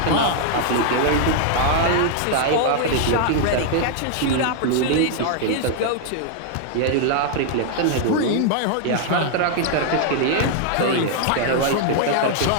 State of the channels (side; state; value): both; different; correlation -0.01